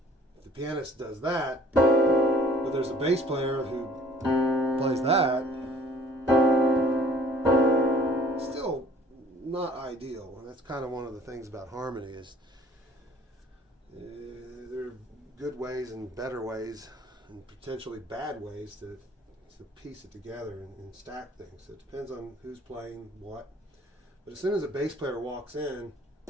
if the pianist does that, but there's a bass player who plays that, it's still not ideal. And that's kind of one of the things about harmony is there are good ways and better ways and potentially bad ways to piece it together and stack things. So it depends on who's playing what. But as soon as a bass player walks in,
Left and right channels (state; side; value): normal; both; correlation 0.54